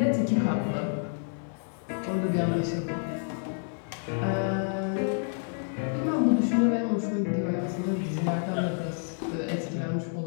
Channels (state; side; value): silent; right; 59 dB below the other